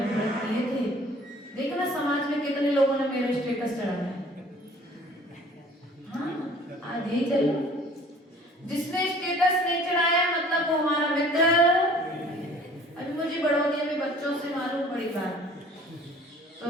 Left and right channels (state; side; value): normal; both; correlation 0.51